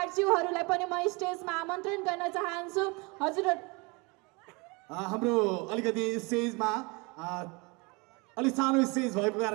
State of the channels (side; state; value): left; quieter; 28.0 dB